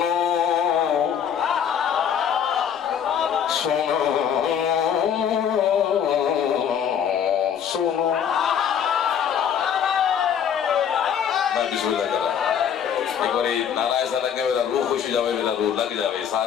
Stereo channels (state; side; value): quieter; right; 8.4 dB